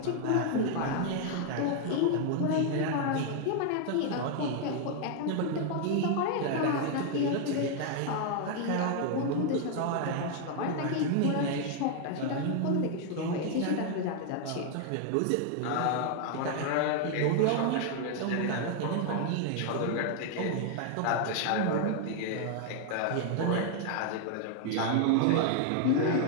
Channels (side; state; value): both; different; correlation 0.00